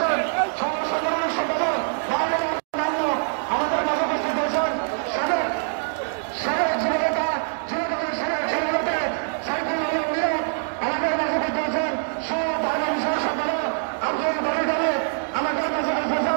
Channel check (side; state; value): left; silent; digital silence